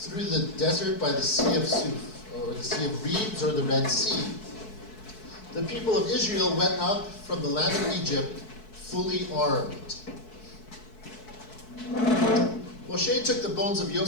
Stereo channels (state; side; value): late; right; 4.6 ms